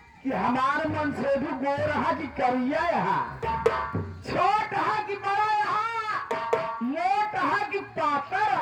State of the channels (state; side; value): identical; both; correlation 1.00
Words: कि हमारे मन से भी गोर है कि करिया यहाँ, छोट है कि बड़ा यहाँ, मोट है कि पातर